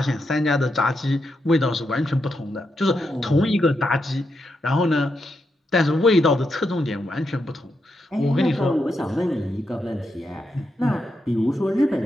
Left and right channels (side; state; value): both; normal; correlation 0.84